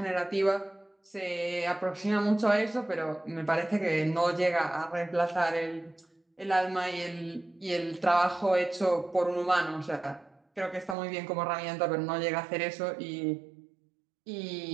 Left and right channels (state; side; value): drops out; left; at 11.0 s